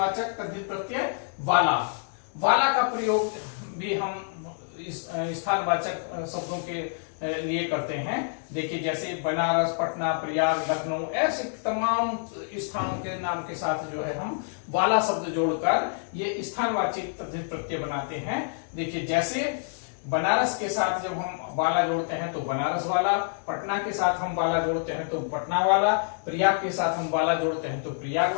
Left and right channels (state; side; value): silent; right; digital silence